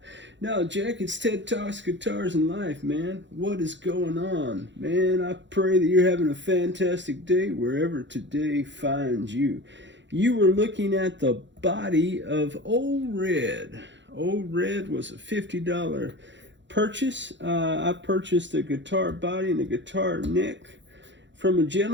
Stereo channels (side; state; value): left; late; 0.53 ms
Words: Now, Jack, it's TED Talks Guitars and Life, man. What is going on? Man, I pray that you're having a fantastic day wherever today finds you. You were looking at the body of Old Red. Old Red was a $50 purchase. I purchased a guitar body and a guitar neck from a